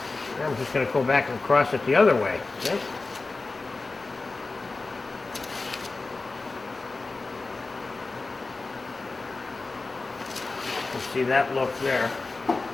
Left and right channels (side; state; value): right; quieter; 3.6 dB